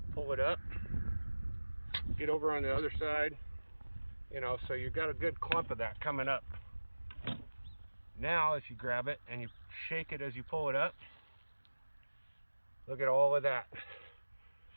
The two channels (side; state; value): both; inverted; correlation -1.00